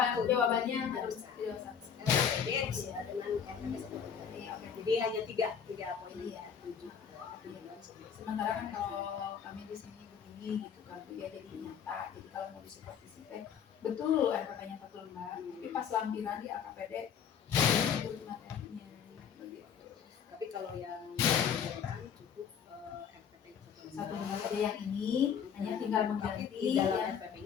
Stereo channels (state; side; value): quieter; right; 7.6 dB